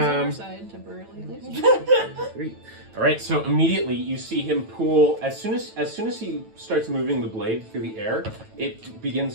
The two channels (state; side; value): late; left; 9.1 ms